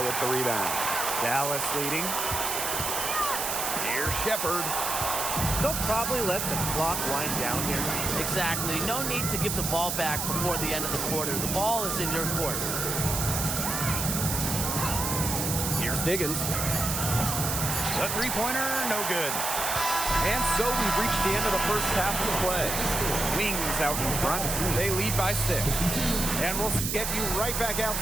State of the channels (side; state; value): right; noise; hiss, 1 dB below the sound